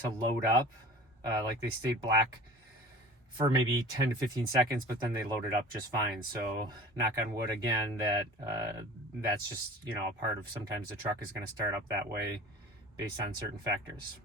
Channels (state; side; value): normal; both; correlation 0.42